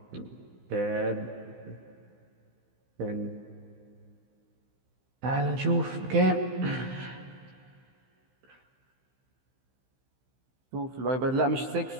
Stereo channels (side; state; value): left; late; 15 ms